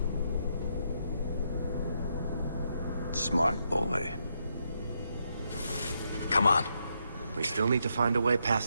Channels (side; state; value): both; inverted; correlation -0.79